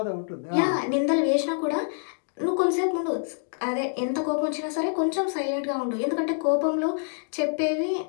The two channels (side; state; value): right; silent; digital silence